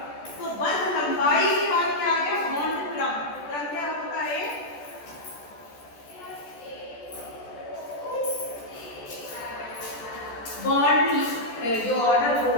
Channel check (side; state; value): right; late; 14 ms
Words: तो बंध लंबाई के बाद क्या आ गया, बॉन्ड क्रम। क्रम क्या होता है, बॉन्ड जो ऑर्डर वो